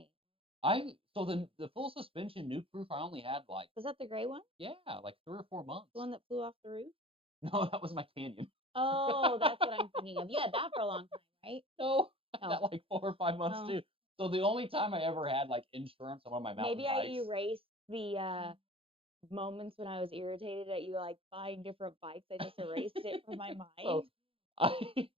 So the full suspension Nuke Proof I only had like. Was that the gray one? Yeah, like 3 or 4 months. The one that flew off the roof? No, that was my Canyon. Oh, that's what I'm thinking of. You had that for a long time, right? No, I had that like 4 or 5 months too. So the only time I ever had like insurance on one of my mountain bikes. Maybe I erased the moments when I was irritated at you like buying different bikes. I just erased it from my mind. So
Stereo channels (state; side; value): late; left; 0.27 ms